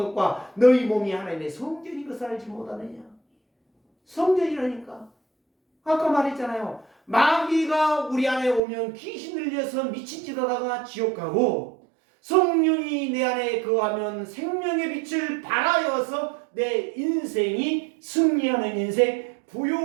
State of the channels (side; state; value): left; drops out; at 8.6 s